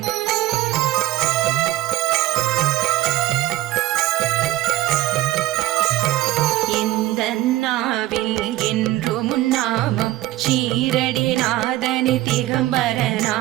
இந்த நாவில் என்றும் நாமம் ஷீரடி நாதனி திகம்பர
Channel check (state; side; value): quieter; left; 16.1 dB